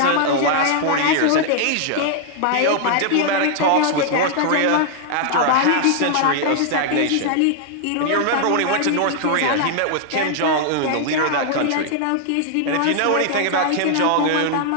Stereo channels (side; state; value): both; different; correlation 0.00